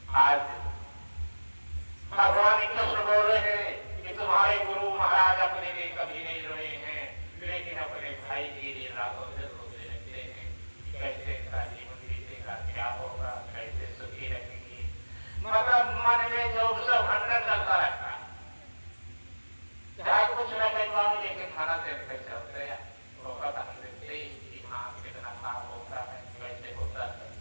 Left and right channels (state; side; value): inverted; both; correlation -1.00